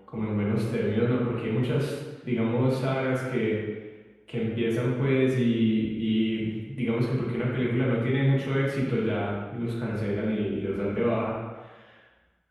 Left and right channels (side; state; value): both; identical; correlation 1.00